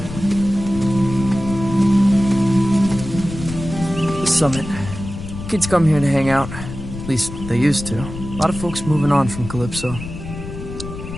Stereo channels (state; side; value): noise; left; rumble, 10 dB below the sound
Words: Summit. Kids come here to hang out. At least they used to. A lot of folks moving on from Calypso.